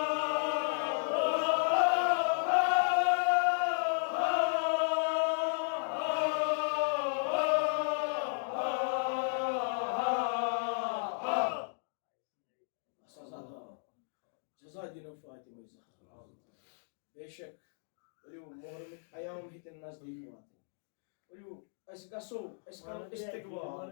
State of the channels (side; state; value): right; silent; digital silence